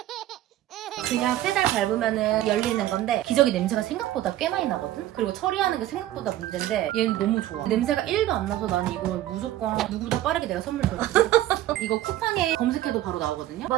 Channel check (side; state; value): left; quieter; 13.9 dB